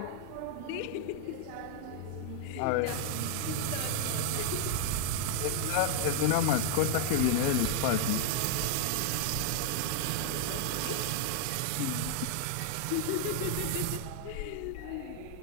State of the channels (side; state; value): both; different; correlation -0.01